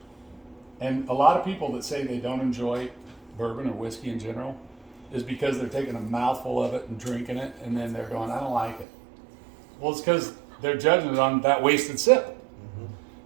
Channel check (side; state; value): left; drops out; at 8.8 s